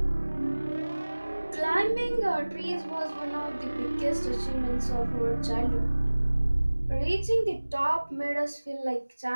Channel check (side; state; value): both; inverted; correlation -1.00